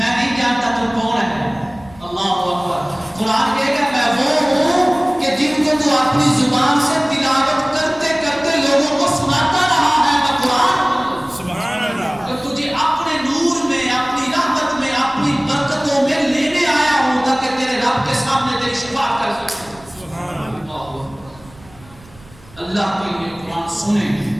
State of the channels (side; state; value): right; noise; rumble, 23 dB below the sound